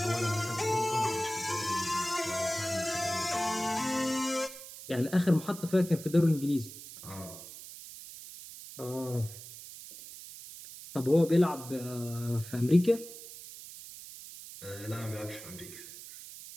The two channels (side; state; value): right; noise; hiss, 14 dB below the sound